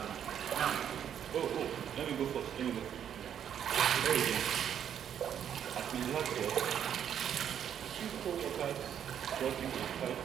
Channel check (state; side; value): quieter; left; 9.1 dB